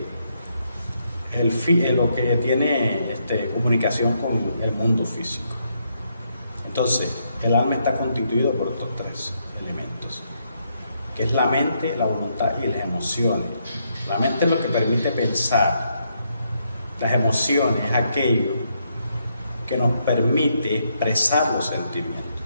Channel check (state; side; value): inverted; both; correlation -0.77